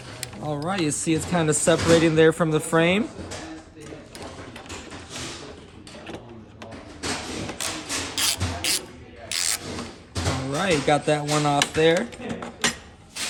All right, you see it's kind of separating there from the frame. All right, got that one off there.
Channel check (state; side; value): identical; both; correlation 1.00